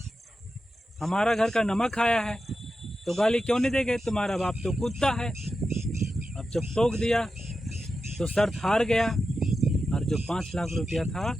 हमारा घर का नमक खाया है, तो गाली क्यों नहीं देंगे, तुम्हारा बाप तो कुत्ता है। अब जब टोक दिया तो शर्त हार गया, और जो 5 लाख रुपया था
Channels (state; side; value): normal; both; correlation 0.91